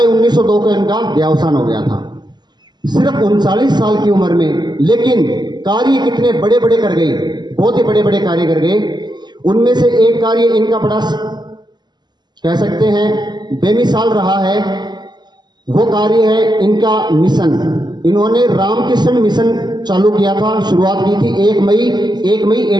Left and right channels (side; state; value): left; late; 0.21 ms